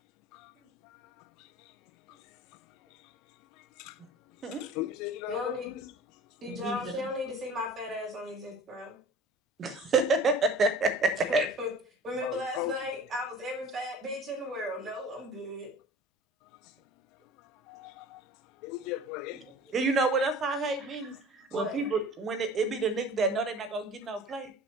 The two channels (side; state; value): both; normal; correlation 0.43